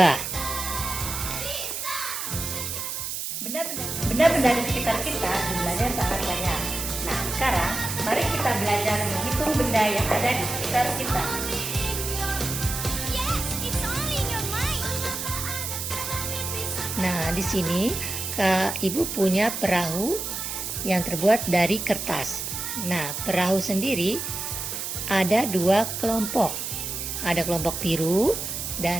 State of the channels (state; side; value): noise; right; hiss, 4 dB below the sound